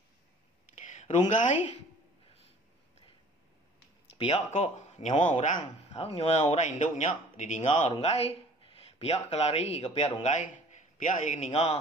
Runggai. Pihak kok nyawa orang. Nyawa orang induknya didinga runggai. Pihak kelari ke pihak runggai. Pihak yang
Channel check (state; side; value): normal; both; correlation 0.50